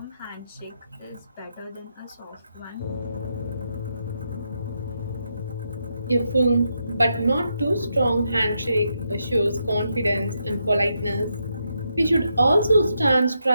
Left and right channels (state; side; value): inverted; both; correlation -0.82